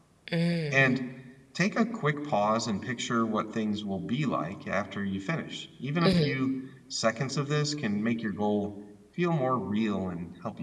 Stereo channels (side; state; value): both; identical; correlation 1.00